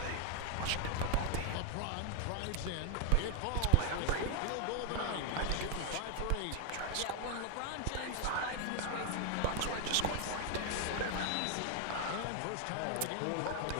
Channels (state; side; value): different; both; correlation 0.01